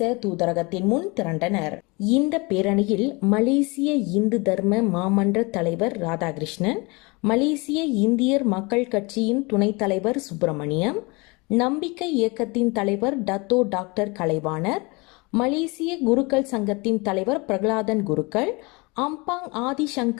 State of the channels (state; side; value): quieter; right; 27.1 dB